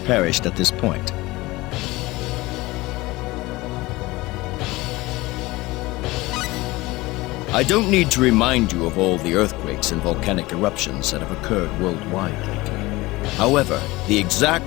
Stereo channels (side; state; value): right; quieter; 20.5 dB